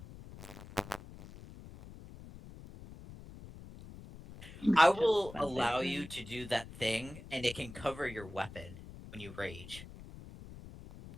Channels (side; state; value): left; noise; rumble, 15 dB below the sound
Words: I will Well, allow they- you to do that thing, and it can cover your weapon when you rage.